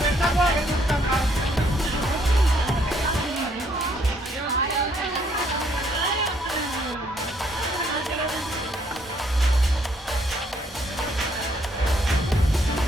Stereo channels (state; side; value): normal; both; correlation 0.68